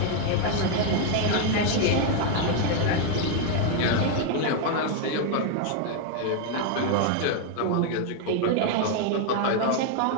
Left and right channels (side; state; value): both; different; correlation 0.00